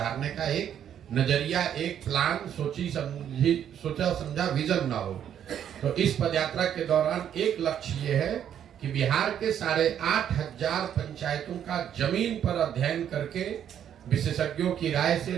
का एक नजरिया, एक प्लान, सोचा समझा विजन ना हो। तो इस पदयात्रा के दौरान एक लक्ष्य ये है कि बिहार के 8,500 पंचायतों का जमीन पर अध्ययन करके, विशेषज्ञों की राय से,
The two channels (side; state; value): left; quieter; 9.6 dB